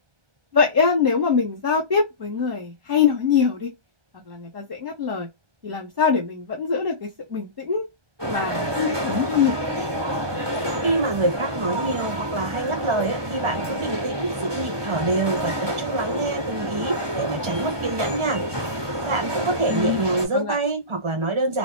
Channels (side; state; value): left; late; 1.2 ms